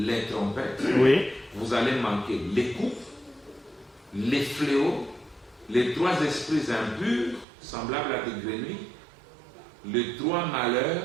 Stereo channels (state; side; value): drops out; left; at 7.5 s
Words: trompettes, vous allez manquer les coups, les fléaux, les 3 esprits impurs, semblables à des grenouilles, les 3 malheurs,